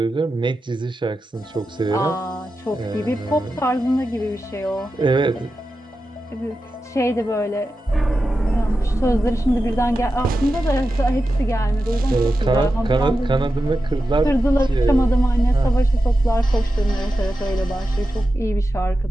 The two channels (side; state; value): both; normal; correlation 0.91